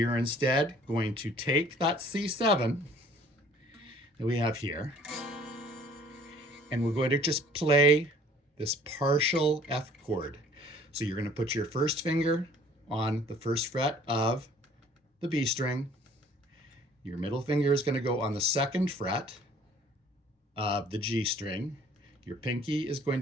are instead going to take that C7 that we have here, and we're going to just play this partial F chord. So you're going to put your first finger on the first fret of the B string. Your middle finger is going to go on the second fret of the G string. Your pinky is going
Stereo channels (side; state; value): both; normal; correlation 0.54